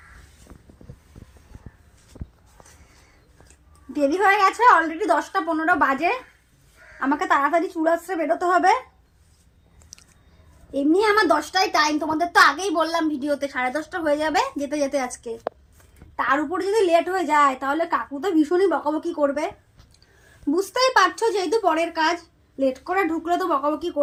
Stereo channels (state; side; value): identical; both; correlation 1.00